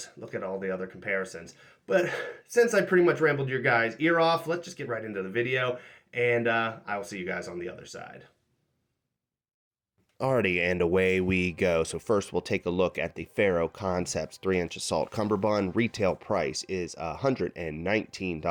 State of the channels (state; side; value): identical; both; correlation 1.00